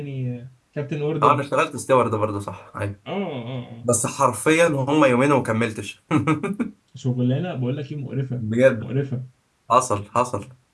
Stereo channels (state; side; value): identical; both; correlation 1.00